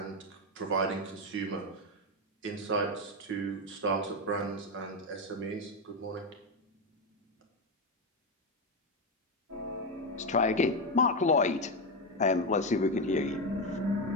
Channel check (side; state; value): both; normal; correlation 0.10